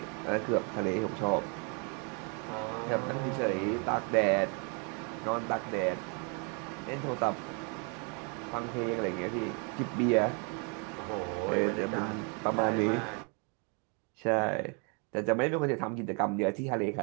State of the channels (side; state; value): left; quieter; 36.3 dB